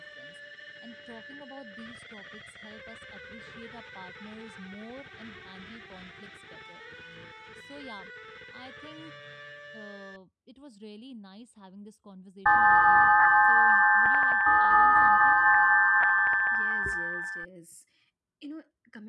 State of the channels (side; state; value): both; identical; correlation 1.00